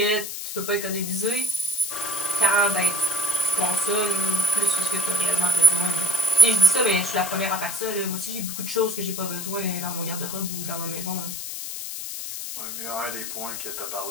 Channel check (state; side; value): noise; left; hiss, 6 dB below the sound